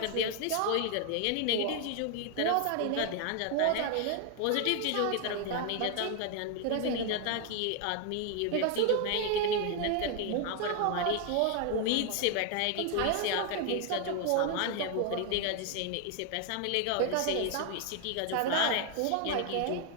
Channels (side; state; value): both; different; correlation 0.00